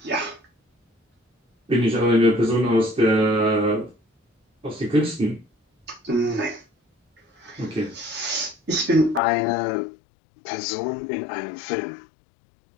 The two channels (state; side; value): drops out; right; at 9.2 s